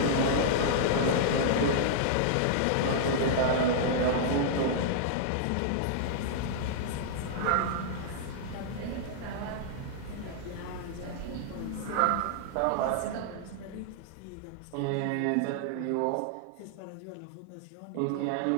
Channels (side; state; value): both; different; correlation -0.01